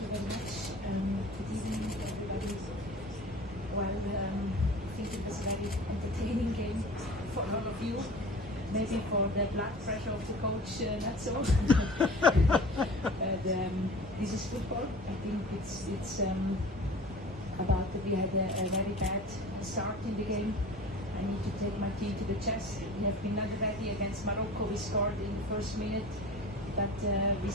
you very much. Good evening, everybody. Well, I think it was a very entertaining game for all of you. Maybe for the blood pressure of the coach, not so. But this is football. I think it's about that we had a very bad start in the game. I need to take my team to the chest. We have been not ready against Morocco. We scored in the first minute, but we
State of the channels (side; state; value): both; normal; correlation 0.40